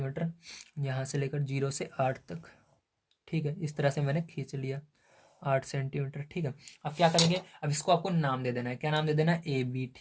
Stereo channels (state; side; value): identical; both; correlation 1.00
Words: यहाँ से लेकर 0 से 8 तक। ठीक है, इस तरह से मैंने खींच लिया 8 सेंटीमीटर। ठीक है, अब क्या करेंगे, अब इसको आपको नाम दे देना है। क्या नाम दे देना है, ए बी।